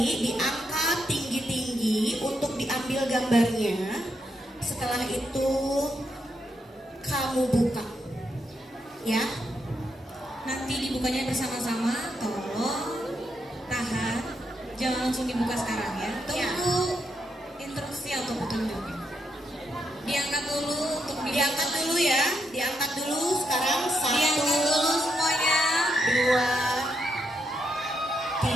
diangkat tinggi-tinggi untuk diambil gambarnya. Setelah itu kamu buka, ya. Nanti dibukanya bersama-sama, tolong tahan, jangan langsung dibuka sekarang ya. Tunggu instruksi atau petunjuknya. Diangkat dulu untuk Diangkat dulu ya, diangkat dulu sekarang. 1, Diangkat dulu semuanya.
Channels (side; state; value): both; normal; correlation 0.81